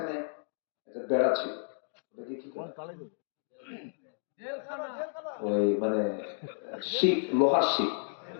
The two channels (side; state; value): right; silent; 57 dB below the other